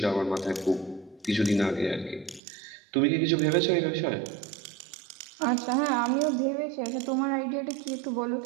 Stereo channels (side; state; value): left; drops out; at 2.4 s